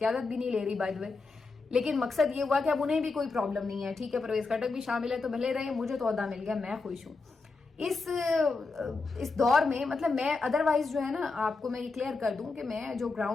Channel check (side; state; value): right; quieter; 4.0 dB